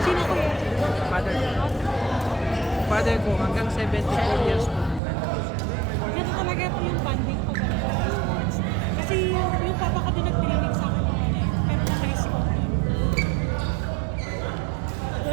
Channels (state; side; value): drops out; left; at 5.0 s